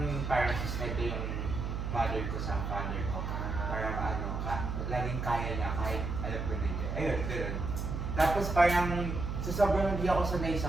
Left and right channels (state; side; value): noise; right; hum, 3 dB below the sound